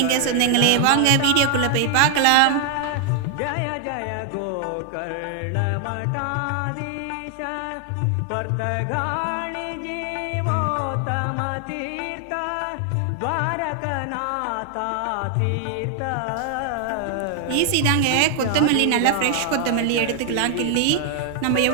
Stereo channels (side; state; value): both; different; correlation 0.00